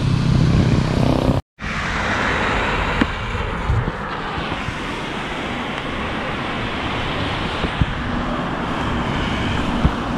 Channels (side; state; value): both; identical; correlation 1.00